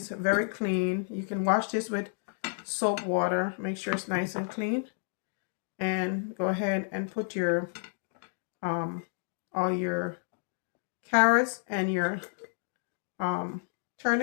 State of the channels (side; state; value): right; silent; 57 dB below the other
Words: very clean. You can wash this with soap water. Make sure it's nice and clean. And go ahead and put your all your carrots and your